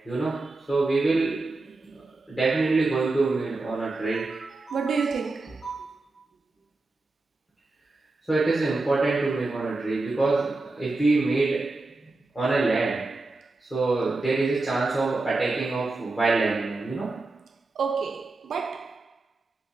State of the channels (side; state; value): left; quieter; 3.3 dB